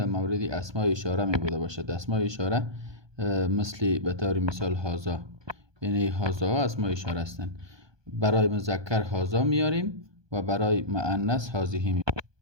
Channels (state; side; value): late; left; 1.2 ms